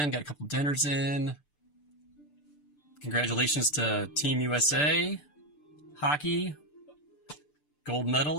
got a couple dinners in. Congratulations to Team USA, hockey, gold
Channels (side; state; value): right; late; 6.8 ms